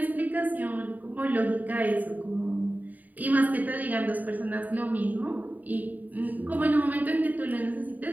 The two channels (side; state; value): left; late; 0.082 ms